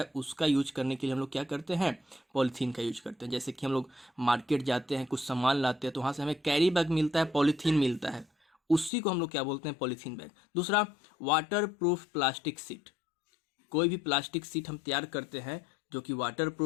उसका यूज करने के लिए हम लोग क्या करते हैं, पॉलीथीन का यूज करते हैं। जैसे कि हम लोग मार्केट जाते हैं, कुछ सामान लाते हैं तो वहाँ से हमें कैरी बैग मिलता है, पॉलीथीन मिलता है, उसी को हम लोग क्या बोलते हैं, पॉलीथीन बैग। दूसरा, वाटर प्रूफ प्लास्टिक सीट। कोई भी प्लास्टिक सीट हम तैयार करते हैं जो कि वाटर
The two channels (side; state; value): right; drops out; at 8.9 s